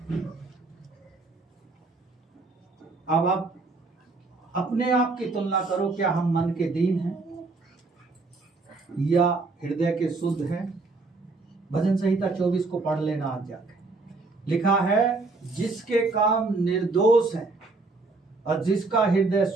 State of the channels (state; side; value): quieter; left; 3.6 dB